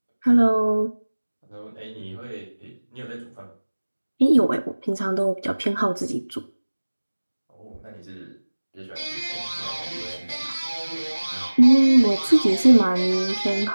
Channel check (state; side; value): inverted; both; correlation -1.00